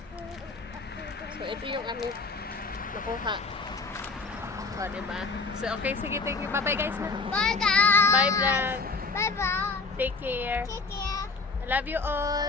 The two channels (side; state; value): right; quieter; 4.0 dB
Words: So, ito yung aming nakuha. O, diba? So, okay. Sige, thank you. Bye-bye, guys. Na. Bye, guys. Bye, vlog. Bye-bye. Take care. Take care. I love you